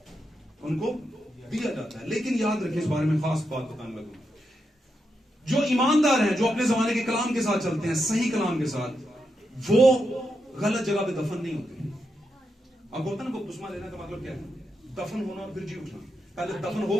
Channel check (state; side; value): normal; both; correlation 0.84